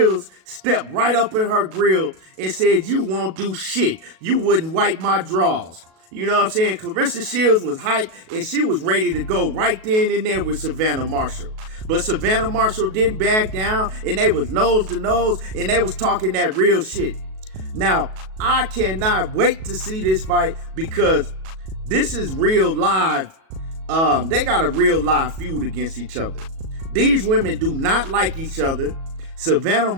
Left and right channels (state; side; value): late; left; 37 ms